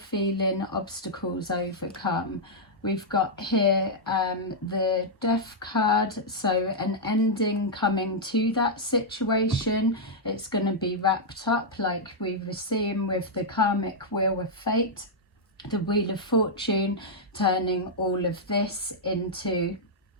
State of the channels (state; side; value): normal; both; correlation -0.06